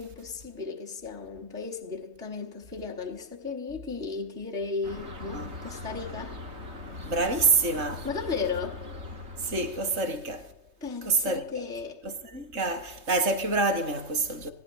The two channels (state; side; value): late; left; 3.2 ms